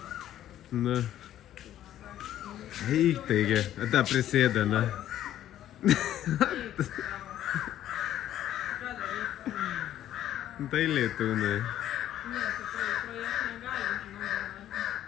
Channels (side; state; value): right; quieter; 12.0 dB